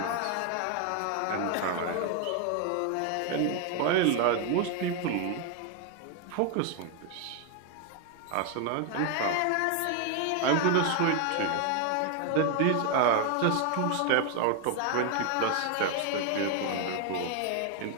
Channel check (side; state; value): both; different; correlation 0.01